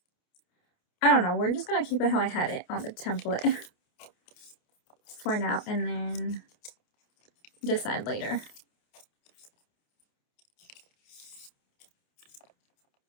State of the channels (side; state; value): right; late; 28 ms